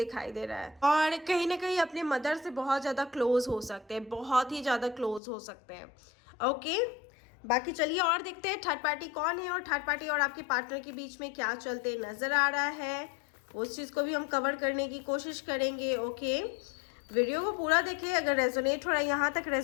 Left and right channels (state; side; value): drops out; right; at 5.2 s